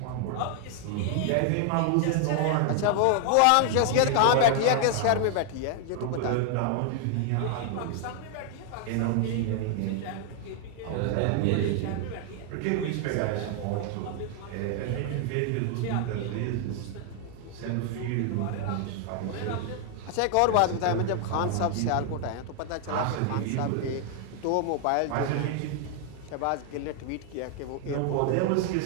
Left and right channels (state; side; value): different; both; correlation 0.00